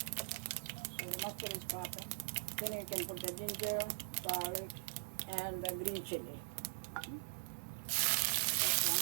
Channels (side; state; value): left; silent; digital silence